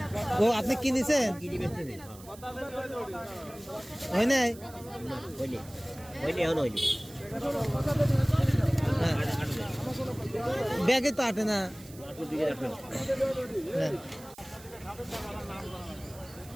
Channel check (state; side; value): noise; right; hiss, 20 dB below the sound